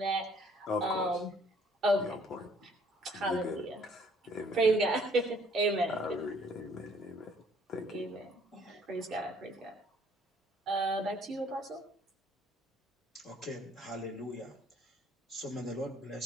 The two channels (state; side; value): normal; both; correlation 0.61